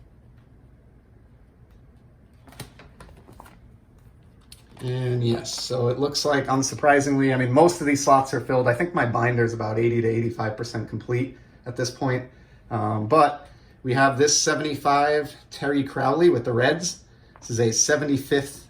And yes, so it looks like, unsurprisingly, I mean, most of these slots are filled. I think my binder is about 80 to 85% complete at this point. But we have this 75 Terry Crowley with the Reds. This is a 75th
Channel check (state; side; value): identical; both; correlation 1.00